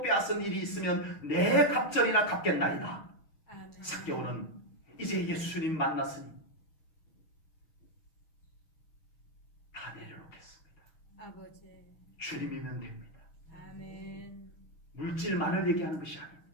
빼앗은 일이 있으면 내 갑절이나 갚겠나이다. 아멘. 삭개오는 이제 예수님 만났으니 다 내려놓겠습니다. 아버지. 주님이면 됩니다. 아멘. 물질만을 얘기하는 것이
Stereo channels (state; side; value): late; right; 6.3 ms